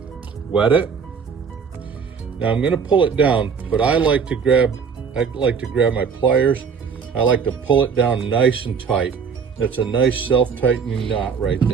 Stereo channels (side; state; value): left; quieter; 6.2 dB